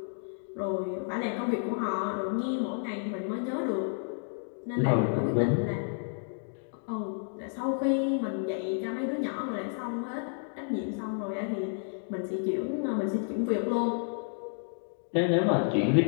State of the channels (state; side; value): silent; right; digital silence